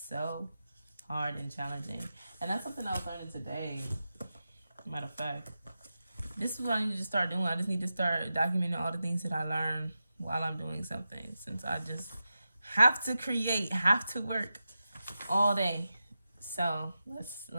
so hard and challenging. And that's something I was learning today. Matter of fact, this is what I need to start doing. I just need to start documenting all the things that I learn while I'm doing something, since I just have to create, have to work all day. So let's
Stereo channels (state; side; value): inverted; both; correlation -0.92